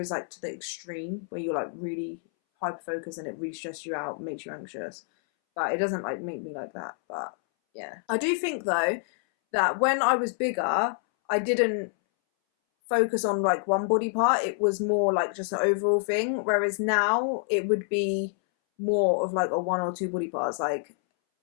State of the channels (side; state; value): right; silent; 60 dB below the other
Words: is like to the extreme where you're like really hyper-focused and it really stresses you out, makes you anxious, but it doesn't like make me like that. But yeah, I do think though that when I was bigger, I didn't focus on like one body part. It was more like just an overall thing, whereas now it would be more of like a one or two body parts. Like